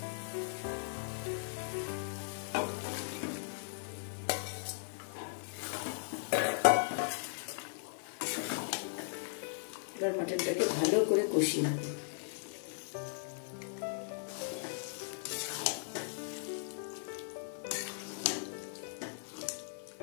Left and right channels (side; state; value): right; silent; digital silence